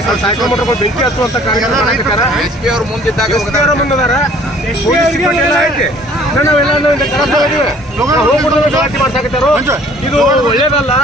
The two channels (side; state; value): both; normal; correlation 0.55